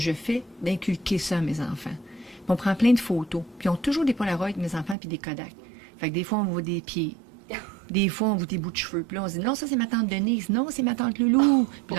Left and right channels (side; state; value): left; drops out; at 5.0 s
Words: fais, d'inculquer ça à mes enfants. Puis on prend plein de photos, puis ils ont toujours des Polaroids, mes enfants, puis des Kodak. Fait que des fois, on voit des pieds. Des fois, on voit des bouts de cheveux. Puis là, on se dit, non, ça, c'est ma tante Denise. Non, c'est ma tante Loulou. Puis